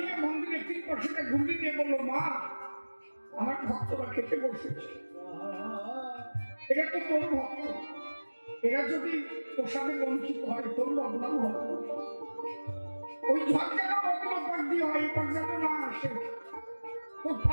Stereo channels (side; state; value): both; inverted; correlation -1.00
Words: মন্দিরের 3 পাশে ঘুরিয়ে দিয়ে বললো, মা আমার ভক্তরা খেতে বসেছে, এটা তো তোর ভক্ত, এরা যদি প্রসাদে বঞ্চিত হয় তোর বদনাম হবে, ওই ঝড় যেন অন্য পাক দিয়ে হয়, এই পাক যেন না আসে, তোর